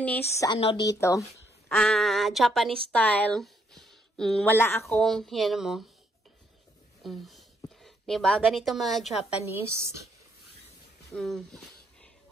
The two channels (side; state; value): both; normal; correlation 0.73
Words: ano dito. Japanese style. Wala akong, yan mo. Diba? Ganito mga Japanese.